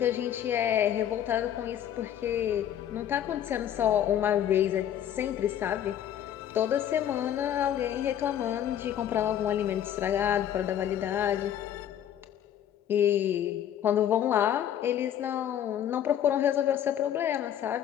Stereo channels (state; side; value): quieter; right; 10.3 dB